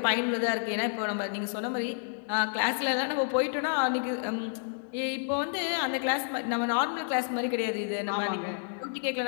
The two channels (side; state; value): right; silent; digital silence